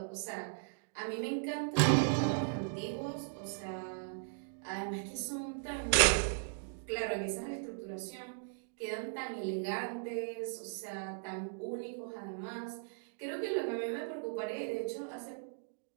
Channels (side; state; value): left; silent; digital silence